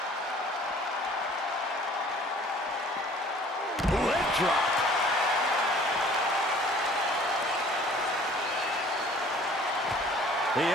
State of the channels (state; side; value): normal; both; correlation 0.52